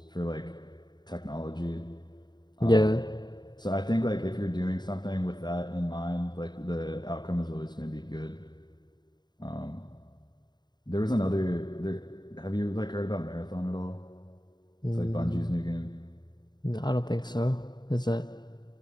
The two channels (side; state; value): right; late; 0.21 ms